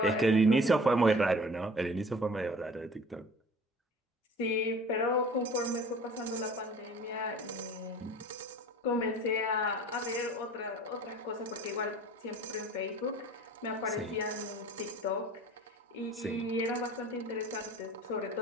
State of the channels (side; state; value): both; normal; correlation 0.45